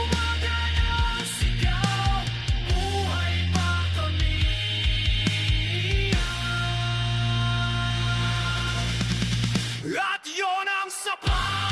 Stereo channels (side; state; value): both; identical; correlation 1.00